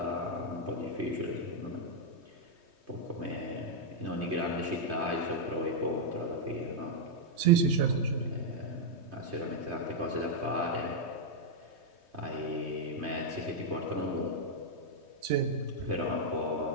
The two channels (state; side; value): late; left; 3.2 ms